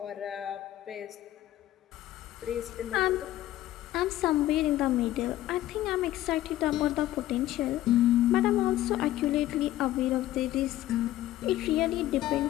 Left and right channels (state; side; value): quieter; right; 14.5 dB